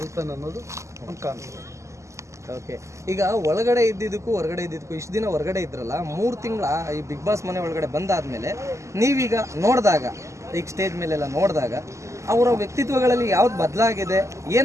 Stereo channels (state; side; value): late; left; 0.14 ms